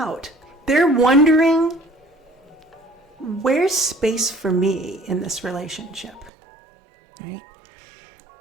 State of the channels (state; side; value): drops out; left; at 6.3 s